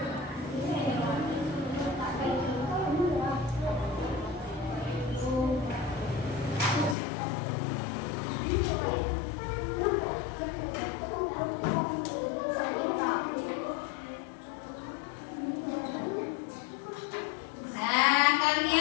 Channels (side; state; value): right; drops out; at 7.0 s